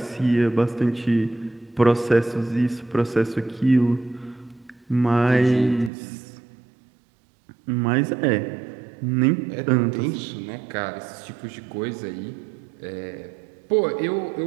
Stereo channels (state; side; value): drops out; left; at 5.9 s